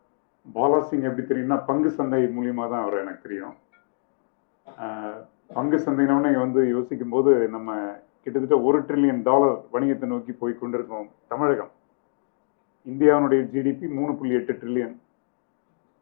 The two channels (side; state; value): right; silent; digital silence